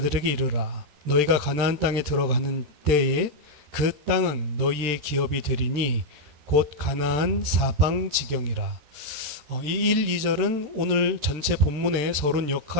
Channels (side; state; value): left; late; 13 ms